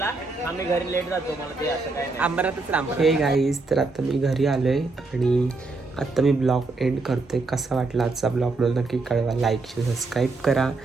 आम्ही घरी लेट जातो. मला ते असं काय अंबरातच राम. हे गाईज तर आता मी घरी आलोय आणि आता मी ब्लॉग एंड करतोय. कसा वाटला आजचा ब्लॉग मला नक्की कळवा. लाईक सबस्क्राईब करा.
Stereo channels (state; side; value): quieter; left; 3.6 dB